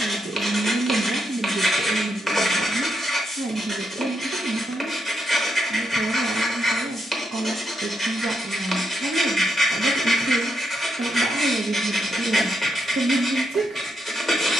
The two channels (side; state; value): both; normal; correlation 0.81